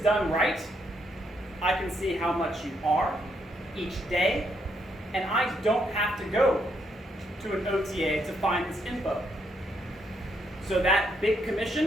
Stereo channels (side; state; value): both; normal; correlation 0.76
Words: done right, I can see how much you are each day, and I don't have to go to an OTA to find this info. So that big